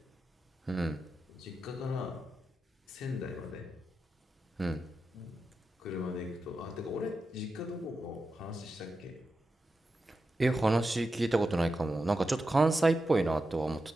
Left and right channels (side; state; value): both; normal; correlation 0.89